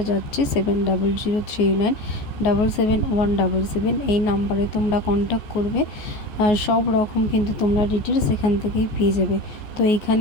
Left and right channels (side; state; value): right; late; 14 ms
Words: যাচ্ছে 7003977177 এই নাম্বারে তোমরা কন্ট্যাক্ট করবে। সব রকম কিন্তু তোমরা ডিটেলস এখান থেকেই পেয়ে যাবে। তো